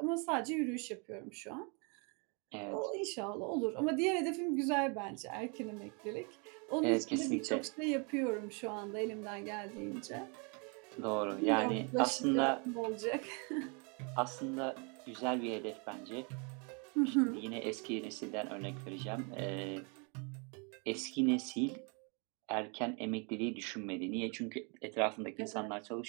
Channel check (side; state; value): left; quieter; 34.5 dB